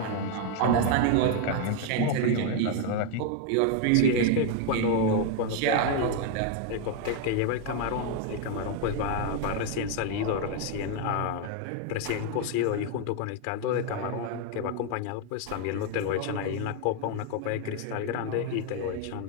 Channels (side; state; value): both; different; correlation 0.01